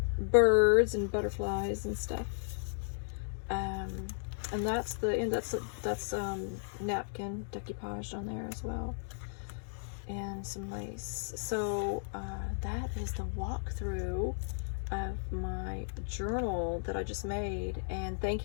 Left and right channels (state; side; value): silent; right; digital silence